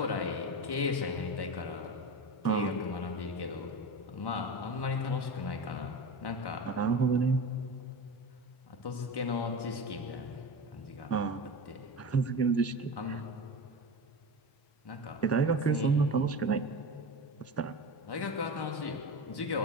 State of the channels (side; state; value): right; late; 1.1 ms